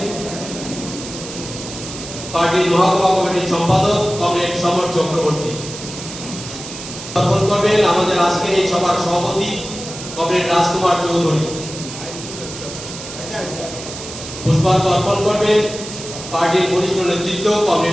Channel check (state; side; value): noise; right; hiss, 11 dB below the sound